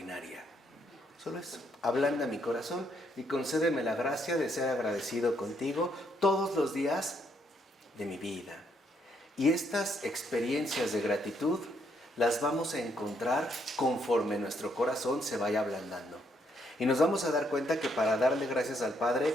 Solo eso, ablanda mi corazón y concédeme la gracia de ser agradecido contigo todos los días de mi vida. Y estas experiencias de gratitud las vamos a encontrar conforme nuestro corazón se vaya ablandando. Y nos vamos a dar cuenta que para darle gracias al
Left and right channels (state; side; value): normal; both; correlation 0.73